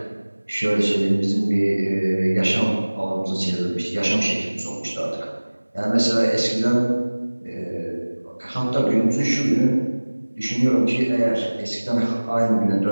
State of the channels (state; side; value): inverted; both; correlation -1.00